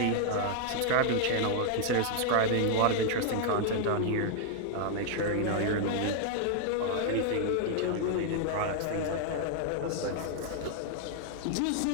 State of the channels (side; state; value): both; different; correlation 0.00